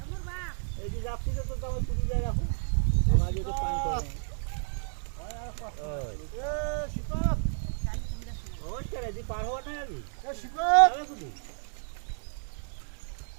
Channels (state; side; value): silent; left; digital silence